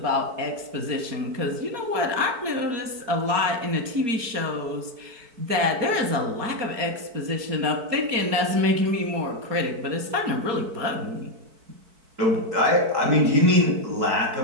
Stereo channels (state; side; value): late; left; 4.5 ms